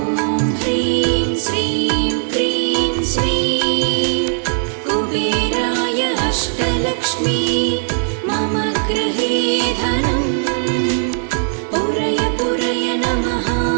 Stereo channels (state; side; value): silent; left; digital silence